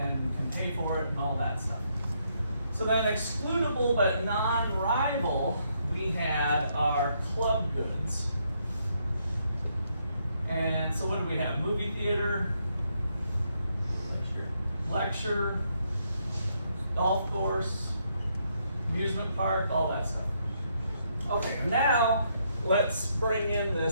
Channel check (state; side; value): inverted; both; correlation -0.75